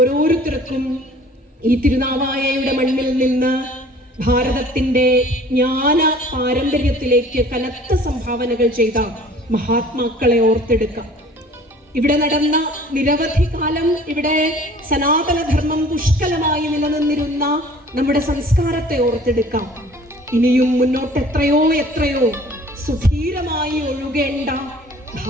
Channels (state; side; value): normal; both; correlation 0.50